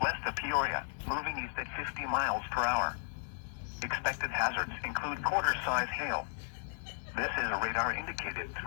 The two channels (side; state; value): right; silent; digital silence